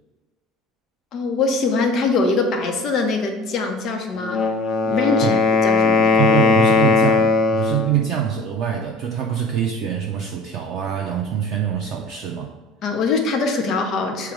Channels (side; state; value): both; normal; correlation 0.42